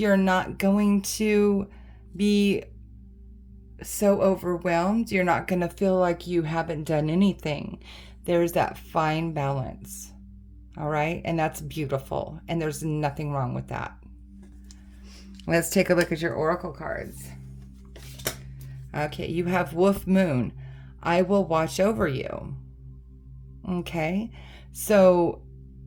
not going to be so overwhelmed. You're not going to feel like you haven't done anything. There's that fine balance. All right? And that's beautiful. And there's nothing wrong with that. Let's take a look at your oracle cards. Okay, you have Wolf Moon. I will watch over you. Okay? So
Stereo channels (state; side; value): identical; both; correlation 1.00